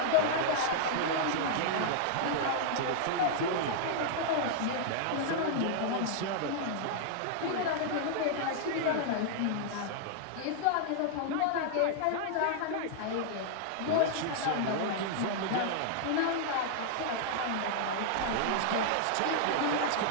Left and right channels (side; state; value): both; different; correlation -0.01